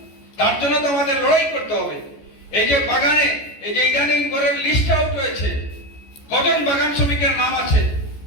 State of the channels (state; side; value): late; right; 14 ms